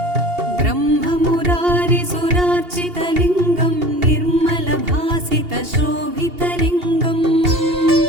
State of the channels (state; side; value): late; left; 2.8 ms